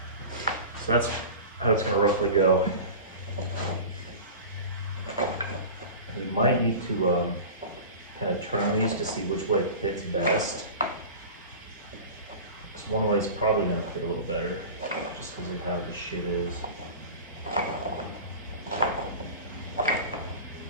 so that's how it's going to roughly go. We might need to kind of turn these to see which way it fits best. Because one way is probably going to fit a little better, just because of how the shit is. That's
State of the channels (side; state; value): both; inverted; correlation -0.34